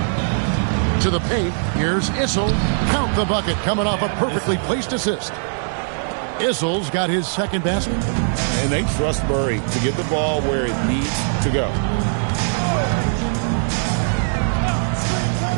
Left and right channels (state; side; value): silent; left; 62 dB below the other